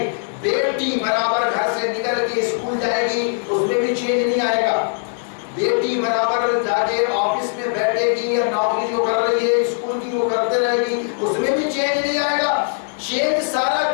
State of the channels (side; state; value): right; silent; 66 dB below the other